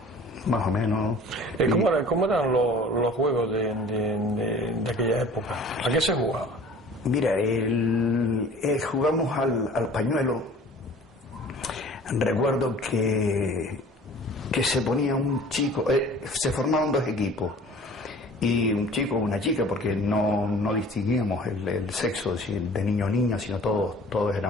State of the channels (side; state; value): both; normal; correlation 0.47